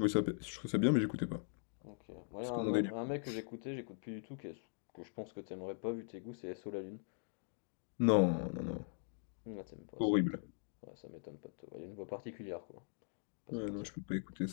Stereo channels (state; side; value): silent; right; digital silence